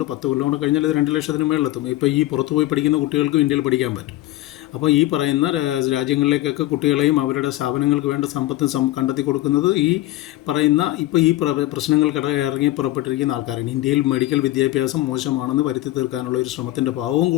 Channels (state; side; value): quieter; right; 16.6 dB